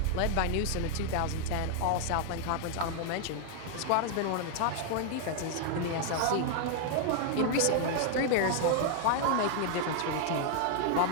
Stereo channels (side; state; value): both; different; correlation 0.00